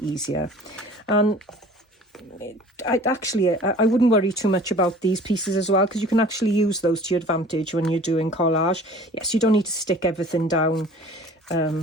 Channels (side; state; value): both; normal; correlation 0.46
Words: easier. And I wouldn't worry too much about these pieces as well, because you can actually use those to your advantage when you're doing collage. Yes, you don't need to stick everything down